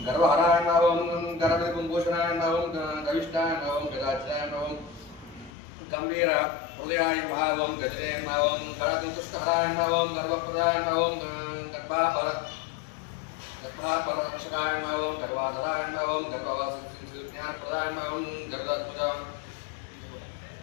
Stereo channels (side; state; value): right; drops out; at 5.5 s